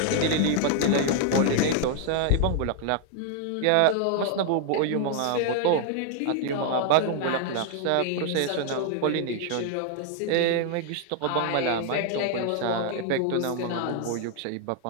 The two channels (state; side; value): different; both; correlation 0.00